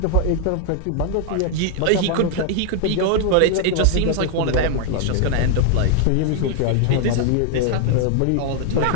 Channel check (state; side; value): different; both; correlation 0.00